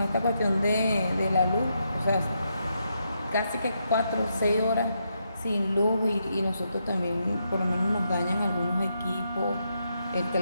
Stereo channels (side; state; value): both; inverted; correlation -0.81